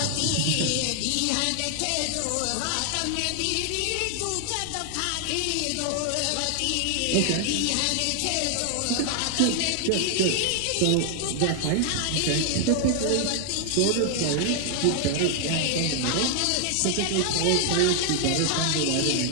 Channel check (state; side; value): different; both; correlation 0.00